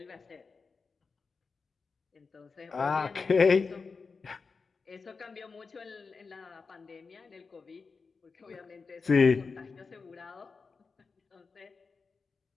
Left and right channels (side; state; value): right; quieter; 4.7 dB